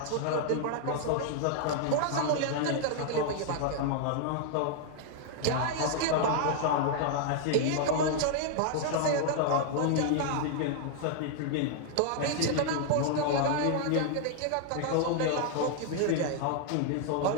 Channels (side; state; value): both; different; correlation 0.00